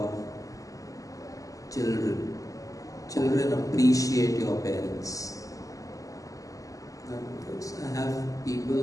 children. Children appreciate your parents. I have people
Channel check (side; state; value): right; late; 0.16 ms